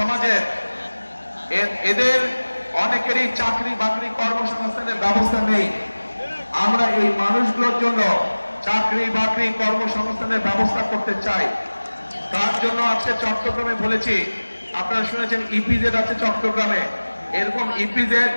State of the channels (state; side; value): inverted; both; correlation -1.00